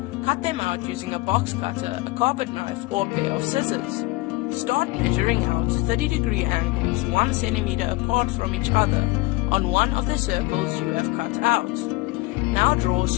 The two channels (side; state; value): right; quieter; 22.2 dB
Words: Cut them out using a box cutter, a carpet knife, or a pair of scissors. Start measuring out 30-degree angles 1 centimeter apart from each other on one of the circles you have cut out. Now draw